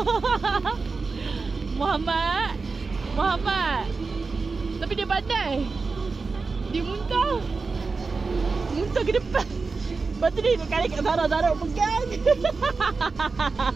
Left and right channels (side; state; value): left; quieter; 4.3 dB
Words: Muhammad. Tapi dia pandai. Dia muntah. Muntah ke depan. Lepas tu dia kali kat Zara pegang.